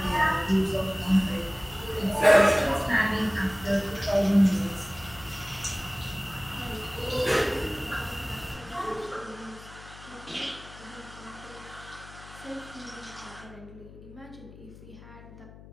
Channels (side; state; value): left; noise; hum, 18 dB below the sound